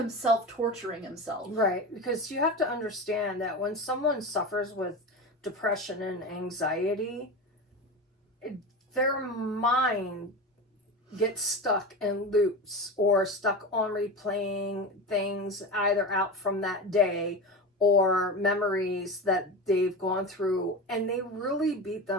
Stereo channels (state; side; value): normal; both; correlation 0.25